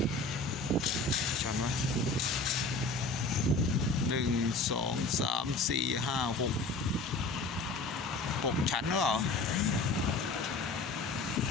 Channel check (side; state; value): right; quieter; 3.3 dB